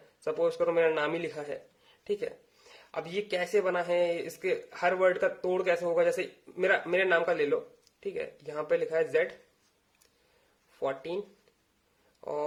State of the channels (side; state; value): both; identical; correlation 1.00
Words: सपोज करो मेरा नाम ही लिखा है, ठीक है। अब ये कैसे बना है, इसके हर वर्ड का तोड़ कैसे होगा, जैसे मेरे नाम का ले लो, ठीक है, यहाँ पे लिखा है Z14